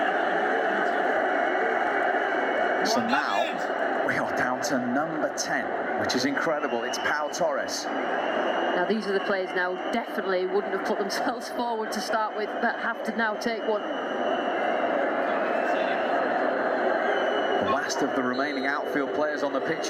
So now we are down to number 10, which is incredible. It's Pau Torres. Now these are the players now definitely wouldn't have put themselves forward to start with, but have to now take one. The last of the remaining outfield players on the pitch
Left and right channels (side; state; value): both; identical; correlation 1.00